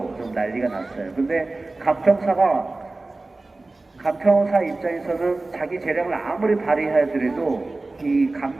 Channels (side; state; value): left; quieter; 3.2 dB